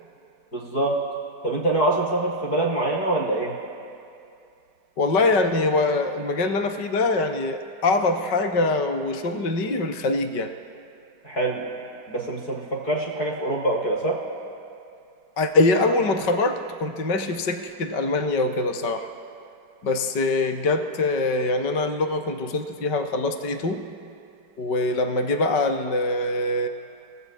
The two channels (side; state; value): right; late; 5.2 ms